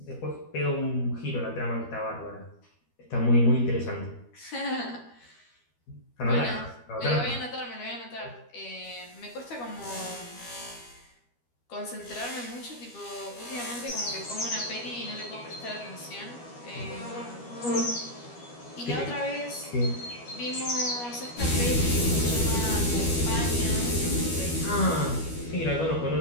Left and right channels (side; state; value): right; late; 12 ms